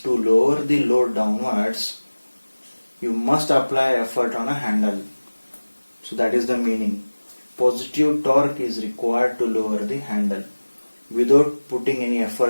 to lower the load downwards, you must apply effort on a handle. So that is the meaning. Positive torque is required to lower the handle. Without putting any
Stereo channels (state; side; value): inverted; both; correlation -1.00